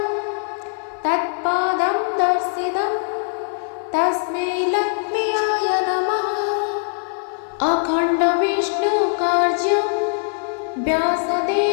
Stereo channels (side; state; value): right; silent; 55 dB below the other